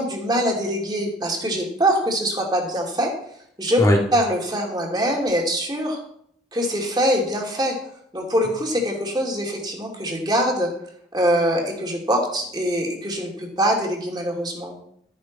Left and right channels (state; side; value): normal; both; correlation 0.51